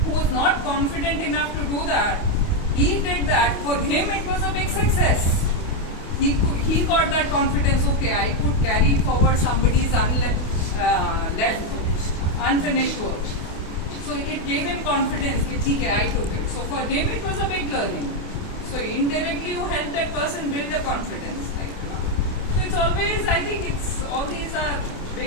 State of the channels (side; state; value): right; late; 28 ms